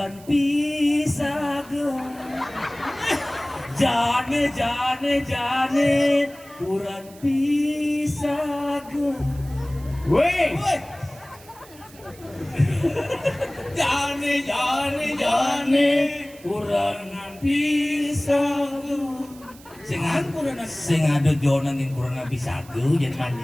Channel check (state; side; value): noise; right; hiss, 22 dB below the sound